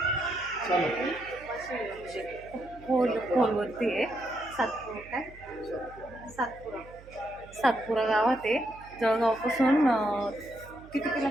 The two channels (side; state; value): right; noise; hum, 20 dB below the sound